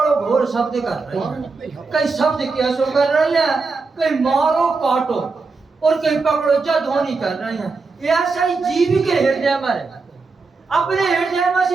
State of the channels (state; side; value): quieter; left; 4.2 dB